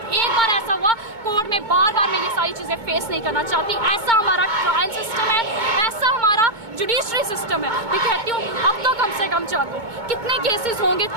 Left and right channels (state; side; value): late; left; 2.2 ms